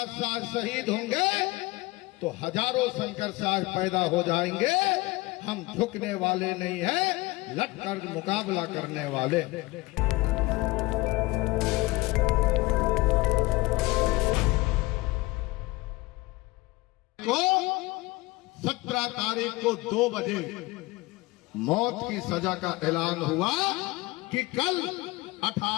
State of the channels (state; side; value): quieter; right; 21.5 dB